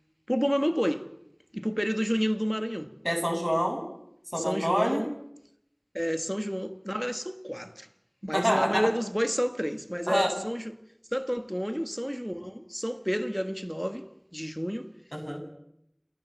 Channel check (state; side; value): identical; both; correlation 1.00